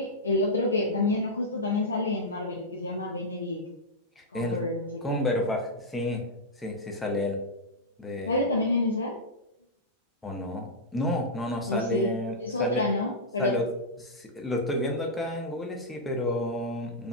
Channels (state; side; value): normal; both; correlation -0.09